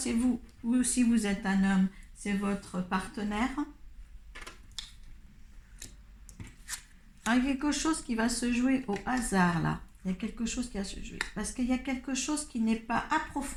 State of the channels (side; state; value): both; identical; correlation 1.00